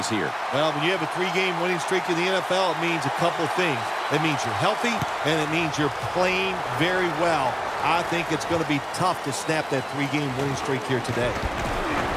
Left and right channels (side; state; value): both; identical; correlation 1.00